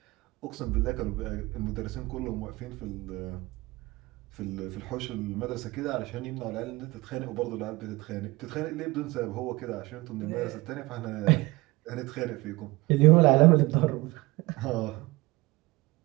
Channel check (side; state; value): left; quieter; 22.1 dB